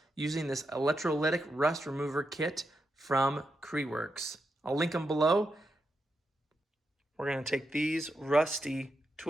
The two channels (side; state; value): both; normal; correlation 0.85